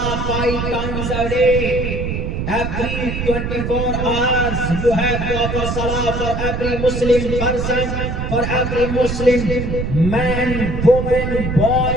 5 times a day. Every 24 hours you have to offer salah for every Muslim person, for every Muslim man, woman,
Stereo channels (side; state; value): right; noise; rumble, 3 dB below the sound